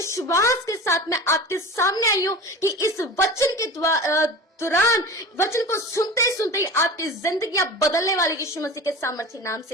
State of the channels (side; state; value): both; normal; correlation 0.34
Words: के साथ मैं आपके सामने आई हूँ कि इस वचन के दौरान, वचन को सुनते ही आपकी जिंदगियां बदलने वाली यीशु मसीह के सामर्थ्य नाम